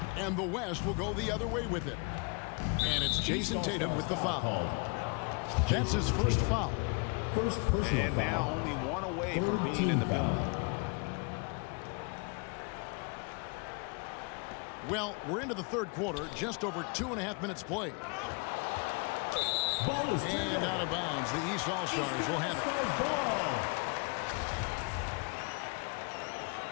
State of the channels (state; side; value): quieter; right; 33.1 dB